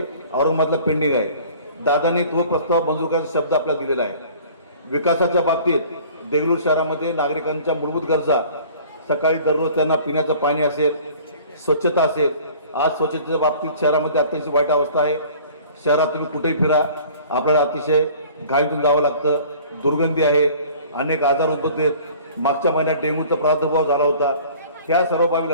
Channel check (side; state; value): both; inverted; correlation -0.48